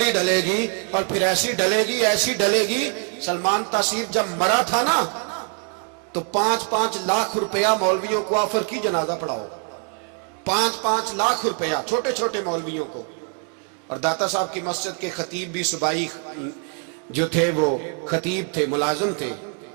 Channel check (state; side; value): quieter; left; 39.3 dB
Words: ڈلے گی، اور پھر ایسی ڈلے گی. سلمان تاثیر جب مرا تھا نا، تو 5-5 لاکھ روپیہ مولویوں کو آفر کی جنازہ پڑھاؤ. 5-5 لاکھ روپیہ چھوٹے چھوٹے مولویوں کو. اور داتا صاحب کی مسجد کے خطیب بھی صوبائی جو تھے، وہ خطیب تھے، ملازم تھے.